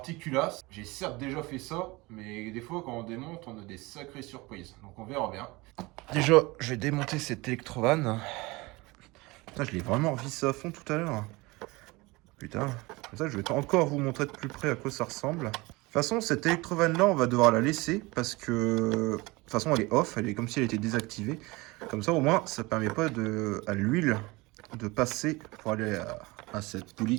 culasse. J'ai certes déjà fait ça, mais des fois quand on démonte, on a des sacrées surprises. Donc on verra bien. Déjà, je vais démonter cette électrovanne. Putain, je l'ai vraiment revissé à fond tout à l'heure. Putain, comme ça je vais encore vous montrer de plus près à quoi ça ressemble. De toute façon, cette électrovanne là, on va devoir la laisser parce que de toute façon elle est off, elle est comme si elle était désactivée. Comme ça au moins ça permet pas à l'huile de passer pour aller à cette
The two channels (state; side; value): quieter; left; 23.1 dB